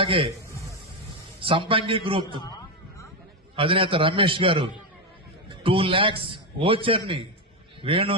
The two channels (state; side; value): normal; both; correlation 0.09